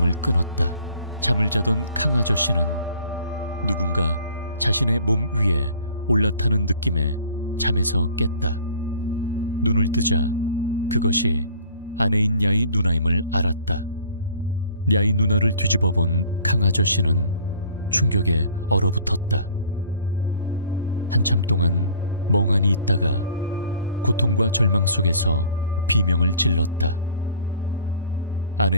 끊었다. 잠을 자던 강 아저씨는 누군가 자신의 몸 위에 올라타는 느낌에 잠에서 깼다. 눈을 뜨자 그것이 아내인 야의 누나임을 알았다. 야의 누나를 뒤집어 본 강 아저씨는 충격에 얼어붙었다. 한참 동안 멍하니 있다가 고통과 절망 속에서 비명을 질렀다.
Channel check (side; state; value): both; inverted; correlation -0.52